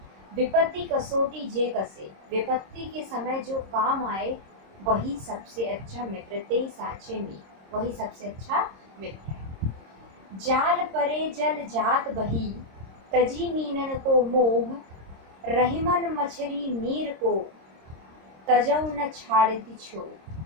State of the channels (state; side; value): late; left; 26 ms